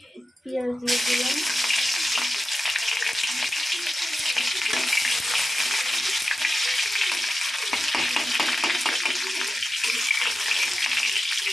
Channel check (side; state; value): both; normal; correlation 0.93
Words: পেঁয়াজ দিয়ে দিলাম,